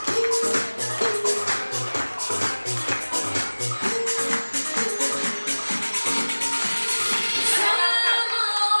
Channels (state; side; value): inverted; both; correlation -1.00